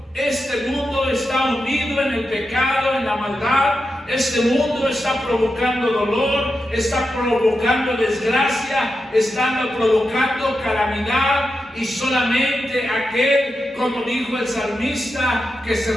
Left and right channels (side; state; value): both; normal; correlation 0.88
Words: Este mundo está hundido en el pecado, en la maldad. Este mundo está provocando dolor, está provocando desgracia, está provocando calamidad, y solamente aquel, como dijo el salmista, que se